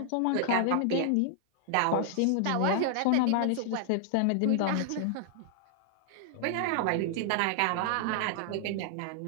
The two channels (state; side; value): different; both; correlation -0.01